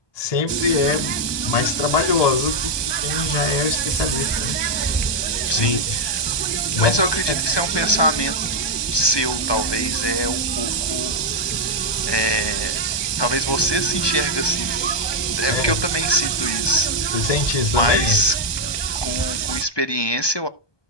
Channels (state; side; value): late; right; 1.2 ms